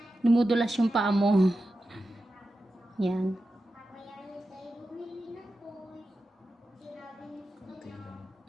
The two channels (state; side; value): normal; both; correlation 0.92